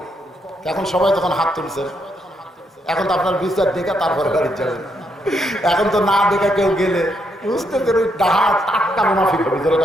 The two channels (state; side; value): normal; both; correlation 0.77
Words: এখন সবাই তখন হাত তুলছেন। এখন তো আপনার বিচার দেখে তারপরে বাড়ি যাবেন। এখন তো না দেখে কেউ গেলে বুঝতেছেন ওই ডাহা টাটকা মুনাফিক হবে।